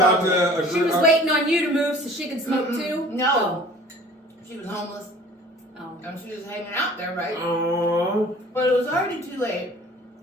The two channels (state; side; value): normal; both; correlation 0.48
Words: to agree. She was waiting on you to move so she could smoke too? No. She was homeless. Oh. And she was hanging out there, right? Oh. But it was already too late.